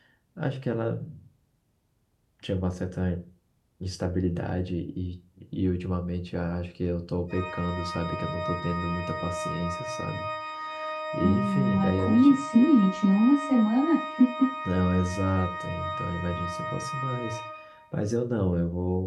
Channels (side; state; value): both; identical; correlation 1.00